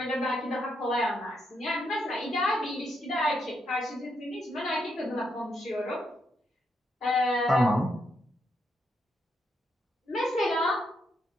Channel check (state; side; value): normal; both; correlation 0.79